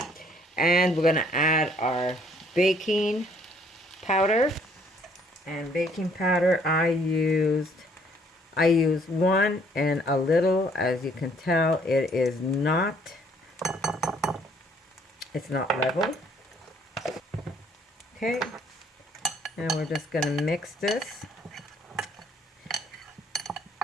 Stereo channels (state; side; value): normal; both; correlation 0.62